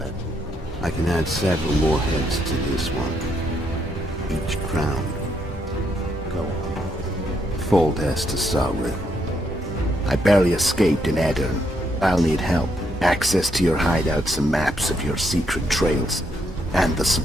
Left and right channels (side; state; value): both; normal; correlation 0.76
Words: I can add several more heads to this one. Each crowned. Go on. Full test to SOBRE. I barely escaped in Aedirn. I'll need help. Access to your hideouts and maps of your secret trails. And the